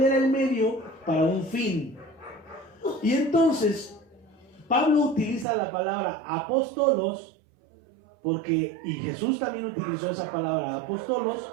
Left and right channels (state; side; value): drops out; left; at 5.5 s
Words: el medio para un fin. Y entonces Pablo utiliza la palabra apóstolos y Jesús también utilizó esa palabra apóstolos,